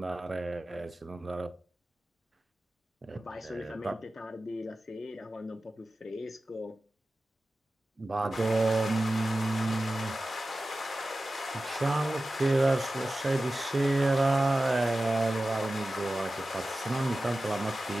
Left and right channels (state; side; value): normal; both; correlation 0.95